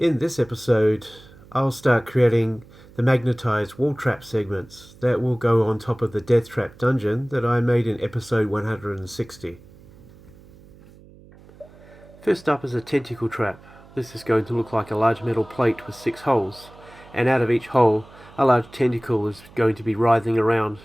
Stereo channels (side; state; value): right; noise; hum, 23 dB below the sound